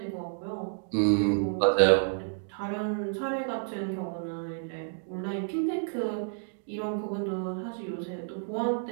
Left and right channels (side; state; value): left; silent; digital silence